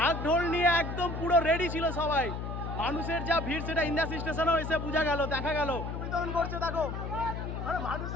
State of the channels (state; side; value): noise; left; hum, 5 dB below the sound